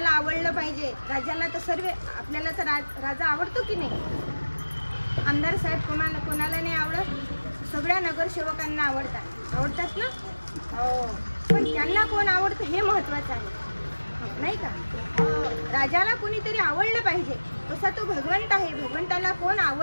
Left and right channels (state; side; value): inverted; both; correlation -1.00